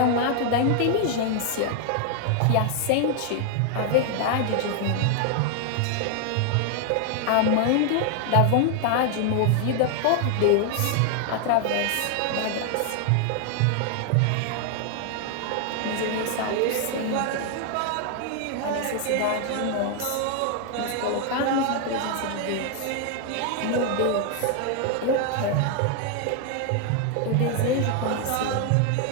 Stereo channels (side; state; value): both; different; correlation 0.00